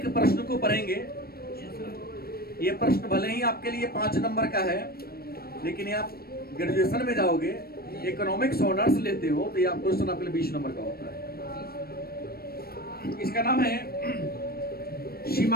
प्रश्न को पढ़ेंगे। ये प्रश्न भले ही आपके लिए 5 नंबर का है, लेकिन ये आप ग्रेजुएशन में जाओगे, इकोनॉमिक्स ऑनर्स लेते हो, तो ये आप क्वेश्चन आपके लिए 20 नंबर का होता है। इसका नाम है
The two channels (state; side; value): late; right; 0.44 ms